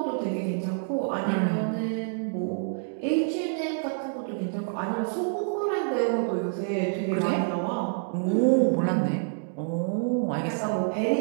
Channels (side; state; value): left; silent; digital silence